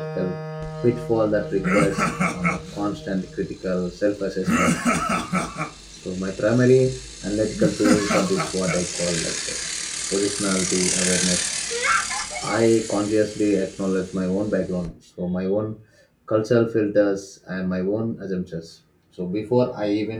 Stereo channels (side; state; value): both; identical; correlation 1.00